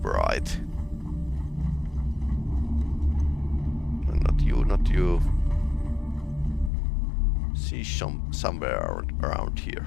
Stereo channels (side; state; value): right; drops out; at 6.7 s